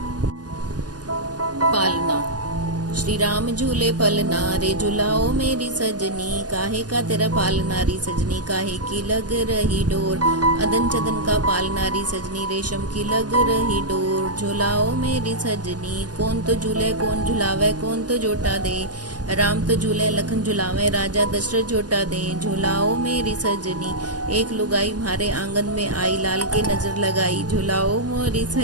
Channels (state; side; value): late; left; 0.69 ms